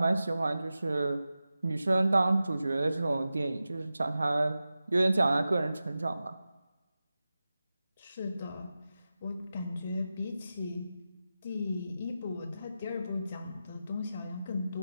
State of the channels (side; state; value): both; inverted; correlation -0.93